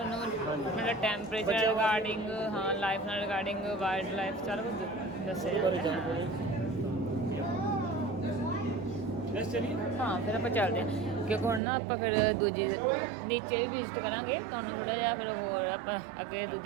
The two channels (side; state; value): left; drops out; at 11.6 s